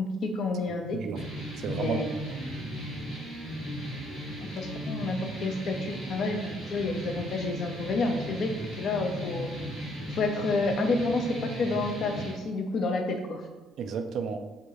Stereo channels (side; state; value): both; normal; correlation 0.67